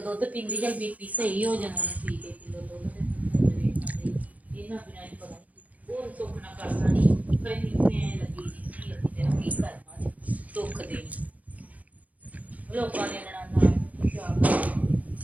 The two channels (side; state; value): left; late; 0.073 ms